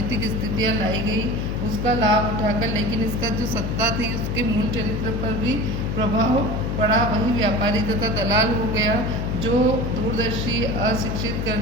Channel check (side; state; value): left; noise; hum, 2 dB below the sound